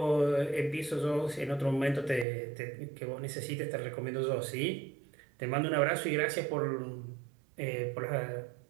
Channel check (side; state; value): left; drops out; at 2.2 s